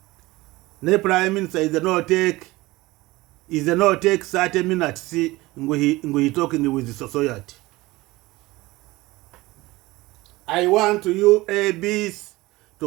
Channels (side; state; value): left; quieter; 20.1 dB